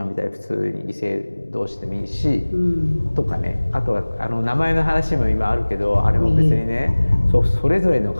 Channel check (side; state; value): both; inverted; correlation -1.00